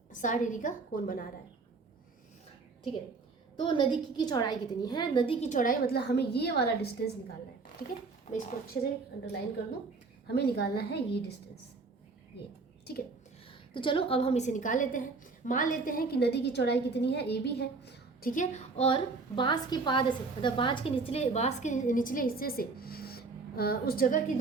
60 डिग्री का कोण बना रहा है, ठीक है। तो नदी की चौड़ाई कितनी है, नदी की चौड़ाई मतलब हमें ये वाला डिस्टेंस निकालना है, ठीक है। मैं इसको अच्छे से अंडरलाइन कर दूं, हमें निकालना है ये डिस्टेंस, ये, ठीक है। तो चलो अब हम इसे निकाल लेते हैं। मान लेते हैं कि नदी की चौड़ाई कितनी है, AB है, ठीक है। और बांस के पाद से, मतलब बांस के निचले हिस्से से उस जगह की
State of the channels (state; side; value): quieter; left; 4.1 dB